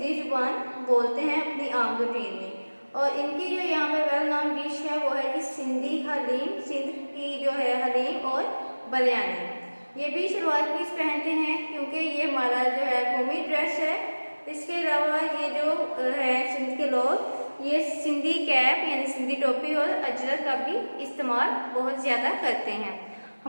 ज़ुबान बोलते हैं अपनी आम रूटीन में। और इनकी जो यहाँ पर वेल नाउन डिश है वो है कि सिंधी हलीम, सिंध की जो है हलीम और बिरयानी। ये भी शलवार कमीज पहनते हैं क्योंकि ये हमारा जो है कौमी ड्रेस है। इसके अलावा ये जो है सिंध के लोग ये सिंधी कैप यानी सिंधी टोपी और अजरक का भी इस्तेमाल बहुत ज़्यादा करते हैं।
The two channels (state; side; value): inverted; both; correlation -1.00